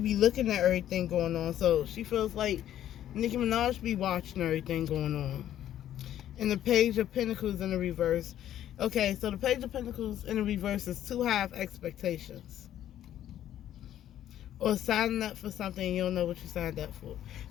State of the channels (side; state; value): right; quieter; 11.6 dB